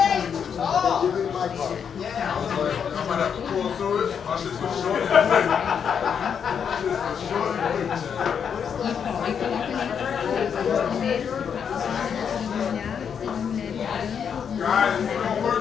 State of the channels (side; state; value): right; quieter; 7.3 dB